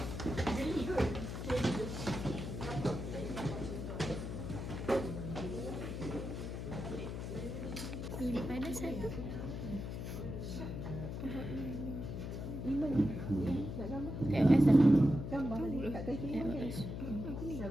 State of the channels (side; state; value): left; noise; hum, 5 dB below the sound